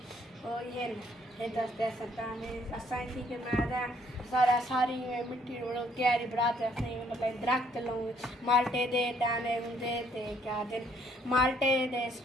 तो ये दस्ते सताने असाई थी कि मैं सारा सारी मिट्टी क्यारी बनाते असाई मतलब दरख्त लूँ माल्टे दे दाने दे ते क्या दे माल्टे दे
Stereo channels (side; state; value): both; normal; correlation 0.66